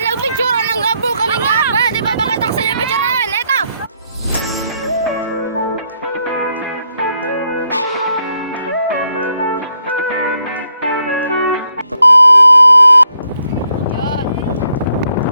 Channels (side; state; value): both; inverted; correlation -0.76